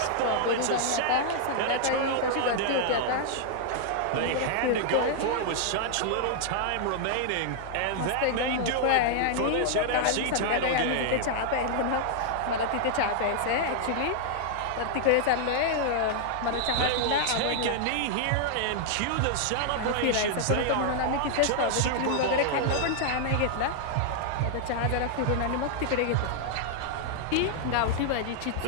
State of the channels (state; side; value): different; both; correlation -0.01